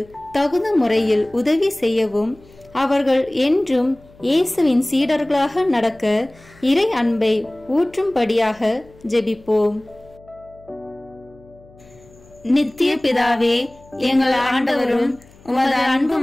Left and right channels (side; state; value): left; noise; hum, 26 dB below the sound